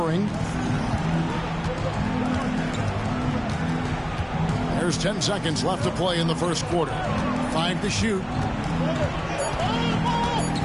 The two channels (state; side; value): identical; both; correlation 1.00